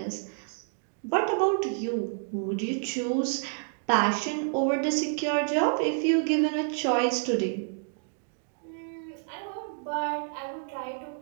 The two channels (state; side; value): silent; left; digital silence